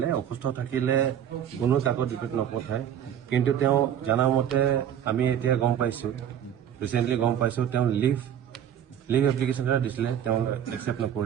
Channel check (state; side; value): quieter; left; 9.7 dB